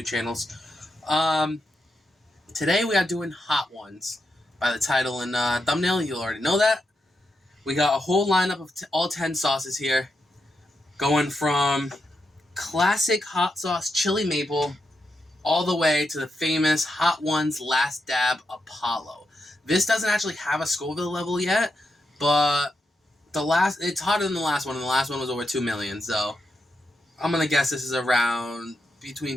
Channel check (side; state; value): both; normal; correlation 0.85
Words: channels. Today we are doing Hot Ones. By the title and thumbnail, you'll already know that. We got a whole lineup of all 10 sauces here, going from classic hot sauce chili maple all the way to the famous Hot Ones Last Dab Apollo. This doesn't actually have a Scoville level yet, but it's hotter than the last one, and the last one was over 2 million, so I'm gonna guess this is around